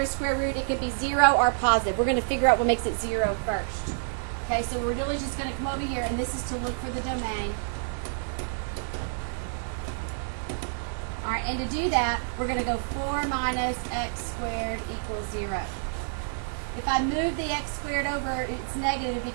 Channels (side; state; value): left; silent; digital silence